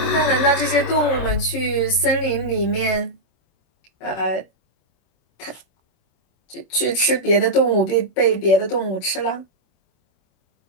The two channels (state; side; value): late; right; 26 ms